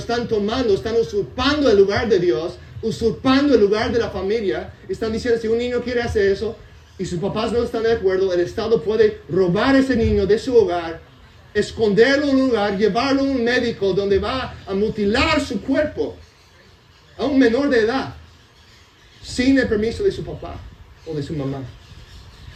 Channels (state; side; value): identical; both; correlation 1.00